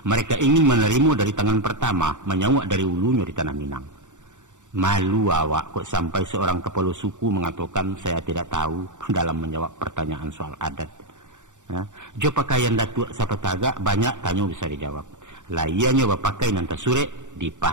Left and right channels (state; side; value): late; left; 0.85 ms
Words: Mereka ingin menerima dari tangan pertama, menyawak dari ulunya di tanah Minang. Malu awak kok sampai seorang kepala suku mengatakan saya tidak tahu dalam menjawab pertanyaan soal adat. Jo pakaian datuk siapa tagak banyak tanya bisa dijawab. Laiannya bapakai nanta surek,